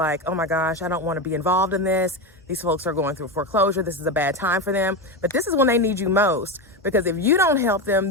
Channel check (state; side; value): normal; both; correlation 0.16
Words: oh my gosh, I don't want to be involved in this. These folks are going through foreclosure. This is a bad time for them. But this is when they need you most, because if you don't help them,